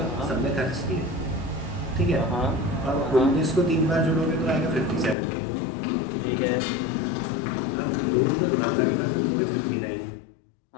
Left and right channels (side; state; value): right; drops out; at 5.2 s